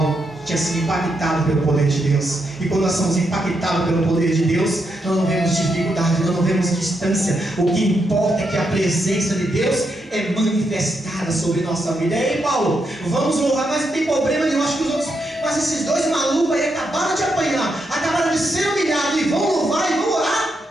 tinha sido impactado pelo poder de Deus. E quando nós somos impactados pelo poder de Deus, nós não vemos dificuldade, nós não vemos distância. O que importa é que a presença de Deus é manifestada sobre nossa vida. E aí, Paulo, vamos louvar, mas não tem problema nenhum. Acho que os outros, mas esses dois malucos aí acabaram de apanhar, acabaram de ser humilhados e vão louvar e vão orar.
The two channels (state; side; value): normal; both; correlation 0.82